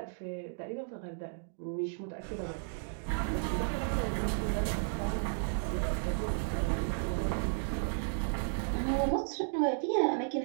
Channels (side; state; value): left; silent; digital silence